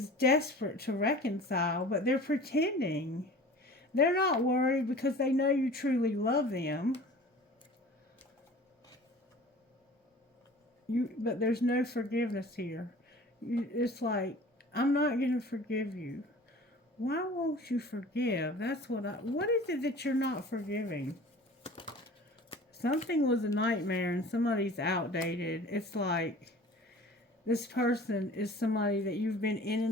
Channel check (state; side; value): normal; both; correlation 0.43